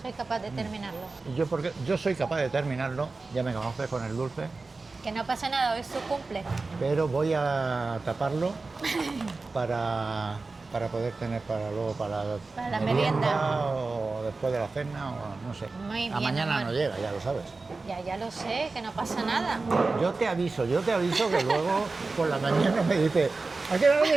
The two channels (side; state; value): left; quieter; 3.7 dB